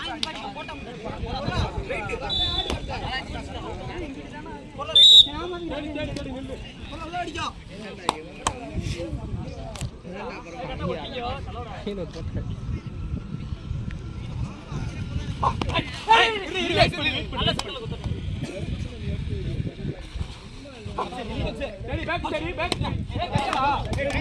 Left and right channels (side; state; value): both; identical; correlation 1.00